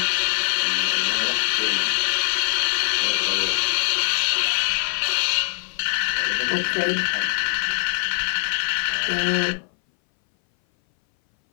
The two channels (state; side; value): silent; right; 60 dB below the other